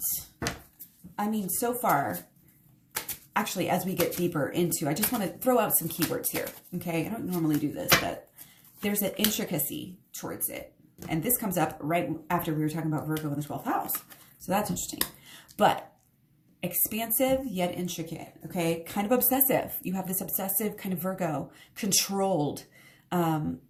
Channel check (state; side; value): identical; both; correlation 1.00